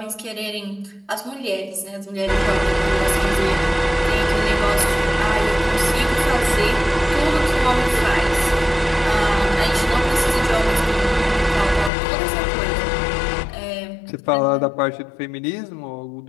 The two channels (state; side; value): drops out; right; at 11.9 s